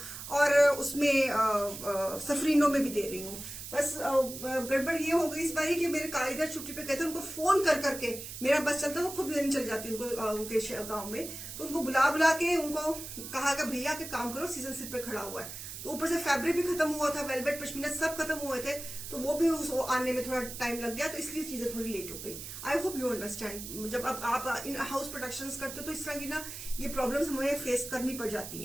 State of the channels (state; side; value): noise; right; hiss, 10 dB below the sound